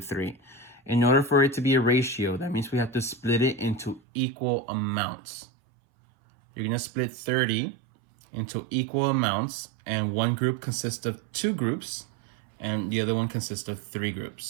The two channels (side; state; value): left; drops out; at 4.0 s